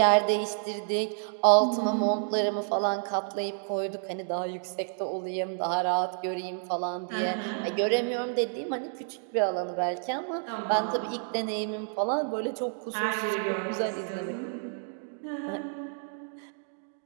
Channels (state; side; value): silent; left; 58 dB below the other